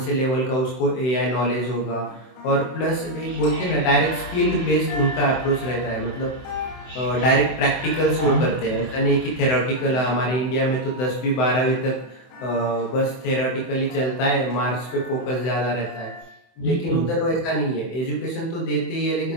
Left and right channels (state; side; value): late; right; 24 ms